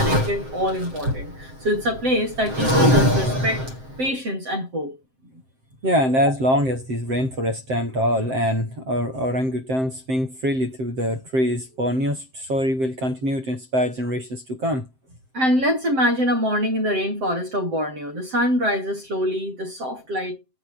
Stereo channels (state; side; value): late; left; 7.7 ms